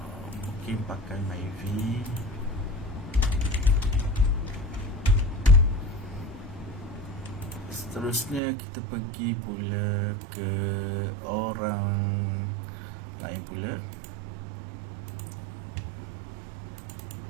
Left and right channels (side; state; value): left; drops out; at 8.4 s